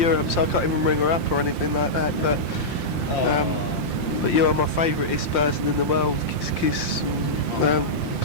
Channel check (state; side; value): late; right; 5.7 ms